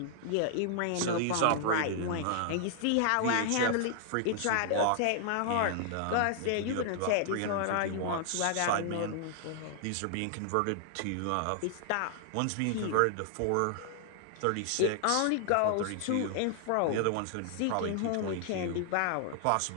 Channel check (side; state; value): both; different; correlation -0.01